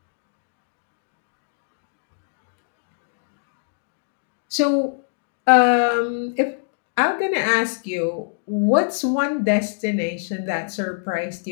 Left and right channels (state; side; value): silent; right; digital silence